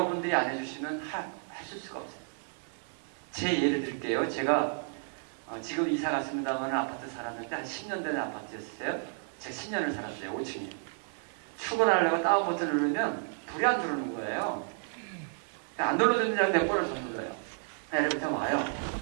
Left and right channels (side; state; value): left; silent; 57 dB below the other